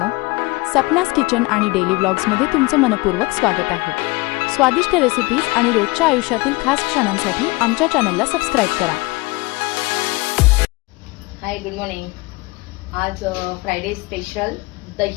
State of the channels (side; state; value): right; quieter; 23.7 dB